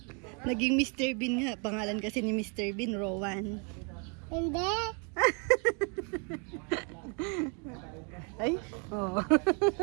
Naging Mr. Bean nga. Pangalan kasi ni Mr. Bean, Rowan. Hindi. Ay, oh.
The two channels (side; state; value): left; quieter; 36.5 dB